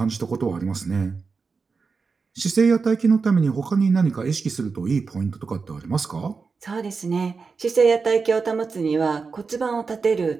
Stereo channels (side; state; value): left; quieter; 4.8 dB